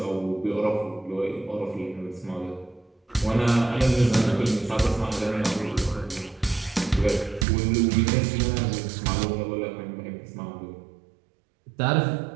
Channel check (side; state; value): left; drops out; at 7.5 s